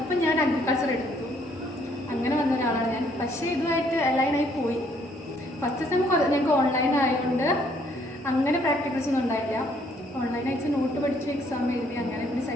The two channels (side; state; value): both; normal; correlation 0.66